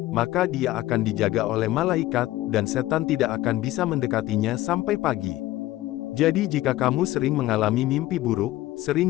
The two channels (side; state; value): right; quieter; 16.1 dB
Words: maka dia akan dijaga oleh malaikat, dan setan tidak akan bisa mendekatinya sampai pagi. Jadi jika kamu sering mengalami mimpi buruk,